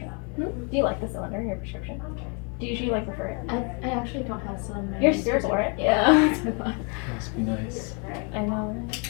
Do you like the cylinder in your prescription? Do you usually like prefer it? I actually don't have some. You're cerebral, right? Yeah. That's what I thought. Must be nice. I know, right?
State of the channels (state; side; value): quieter; right; 34.9 dB